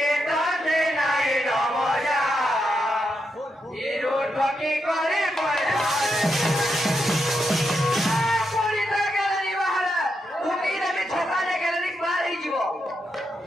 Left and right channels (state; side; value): normal; both; correlation 0.83